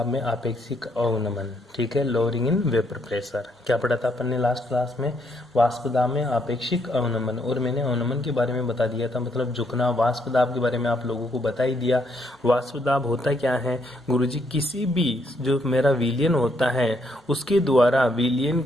में आपेक्षिक अवनमन, ठीक है, लोअरिंग इन वेपर प्रेशर। क्या पढ़ा था अपन ने लास्ट क्लास में? वाष्प दाब में आपेक्षिक अवनमन। और मैंने अवनमन के बारे में बता दिया था, मतलब झुकना। वाष्प दाब के बारे में आप लोगों को बता ही दिया। वाष्प दाब होता क्या है गुरुजी? किसी भी जो मेरा विलयन होता है उसके द्वारा विलयन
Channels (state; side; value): normal; both; correlation 0.73